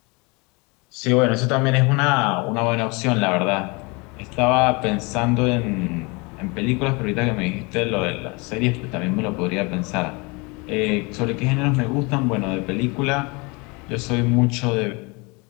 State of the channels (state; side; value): quieter; right; 28.1 dB